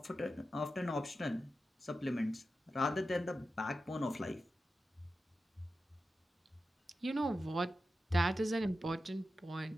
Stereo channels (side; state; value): both; normal; correlation 0.91